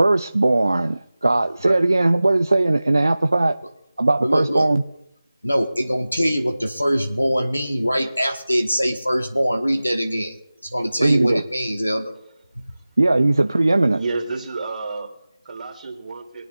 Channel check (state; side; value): inverted; both; correlation -0.97